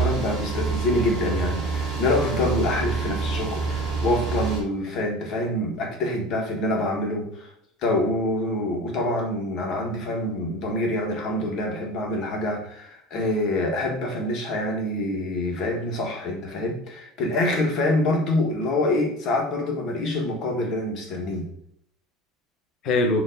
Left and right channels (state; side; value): normal; both; correlation 0.36